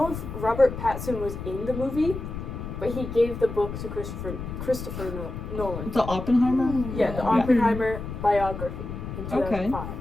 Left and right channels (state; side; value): noise; left; rumble, 8 dB below the sound